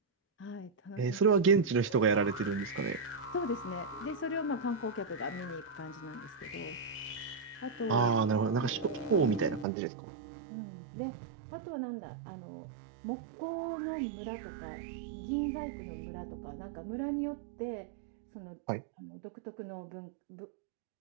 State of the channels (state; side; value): drops out; left; at 9.7 s